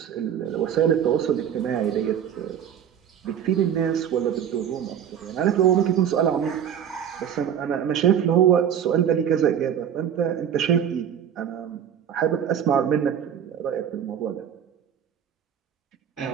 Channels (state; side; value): quieter; left; 9.0 dB